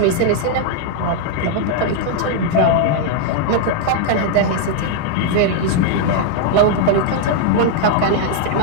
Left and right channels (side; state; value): both; different; correlation 0.00